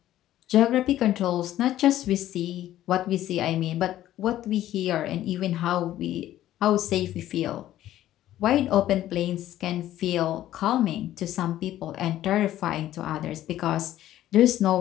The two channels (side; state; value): right; quieter; 13.3 dB